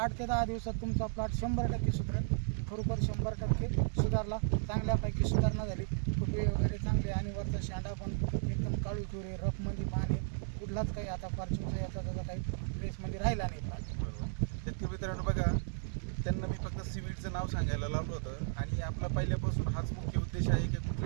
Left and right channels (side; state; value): left; silent; 55 dB below the other